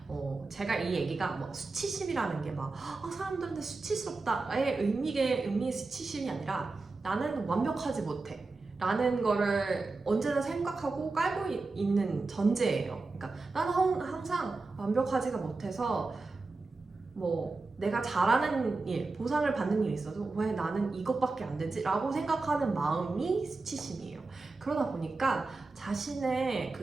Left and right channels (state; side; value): quieter; left; 3.7 dB